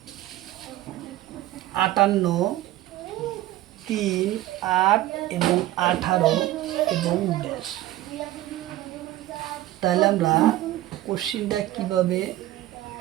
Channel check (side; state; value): left; quieter; 15.3 dB